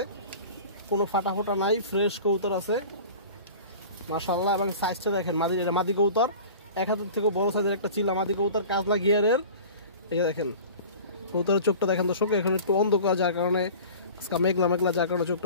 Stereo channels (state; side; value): inverted; both; correlation -0.39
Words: কোনো ফাটা ফোটা নাই, ফ্রেশ কবুতর আছে মাশাআল্লাহ। এবং সাইজটা দেখেন, মাদি, এটা মাদি কবুতর, 1 হাতের থেকে বড় সাইজের একটা চিলা মাদি কবুতর, কাজলা গিয়ারের। এই যে দেখেন কবুতরের চোখটা দেখেন দর্শক, এখন একটু অন্ধকার, যার কারণে আজকে মেঘলা মেঘলা, যার কারণে চোখটা